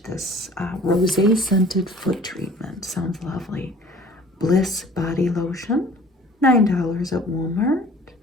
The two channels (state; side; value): normal; both; correlation 0.50